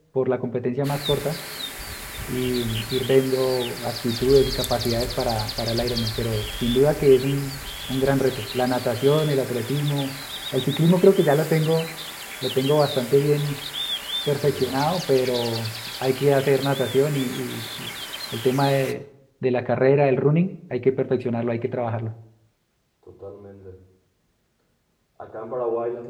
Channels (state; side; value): identical; both; correlation 1.00